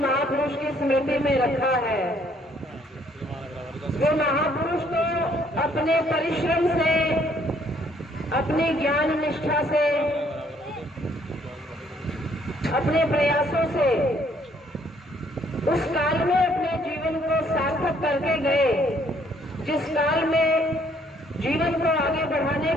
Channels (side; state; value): both; normal; correlation 0.65